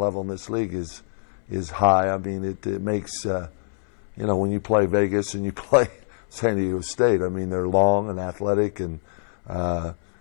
in this league is high. I mean, it makes when you play Vegas and you play San Diego State, I mean, they're long and athletic, and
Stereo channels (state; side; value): silent; right; 62 dB below the other